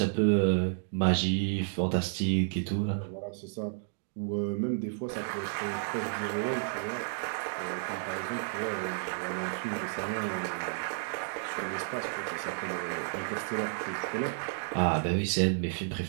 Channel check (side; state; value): left; silent; digital silence